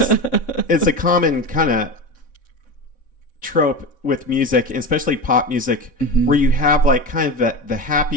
is a common kind of trope with music, especially pop music, where you have like kind of the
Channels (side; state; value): right; late; 3.6 ms